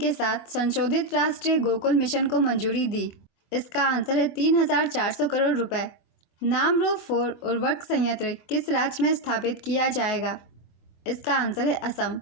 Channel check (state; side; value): late; right; 25 ms